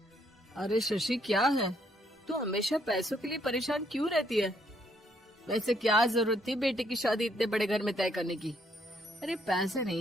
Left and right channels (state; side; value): normal; both; correlation 0.71